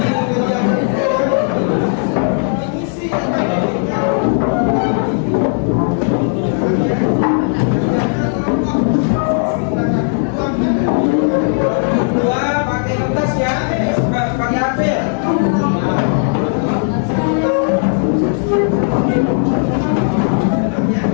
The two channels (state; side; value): silent; right; 57 dB below the other